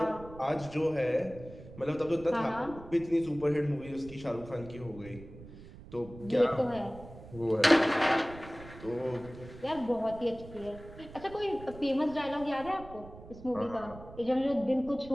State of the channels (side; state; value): right; noise; rumble, 16 dB below the sound